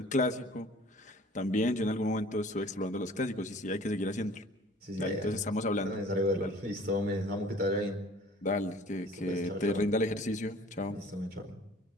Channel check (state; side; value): normal; both; correlation 0.49